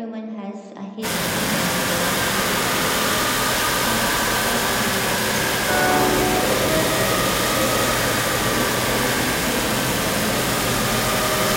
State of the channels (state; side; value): identical; both; correlation 1.00